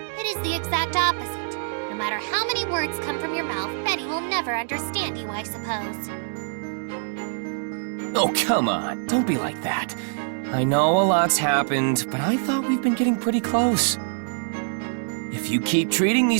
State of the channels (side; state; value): left; silent; 62 dB below the other